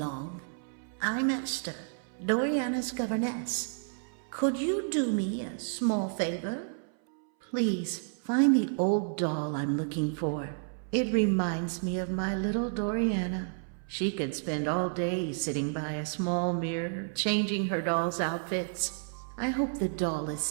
I'm Esther, Doriana's governess. Could you do me a small favor? Please find the old doll I'm looking for. It reminds me of my little Doriana. She could spend all day sitting by a small mirror, changing her doll's outfits. I hope the doll is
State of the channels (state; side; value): silent; left; 57 dB below the other